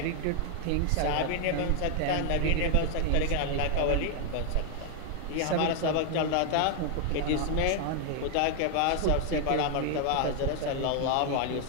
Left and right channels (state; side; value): different; both; correlation 0.00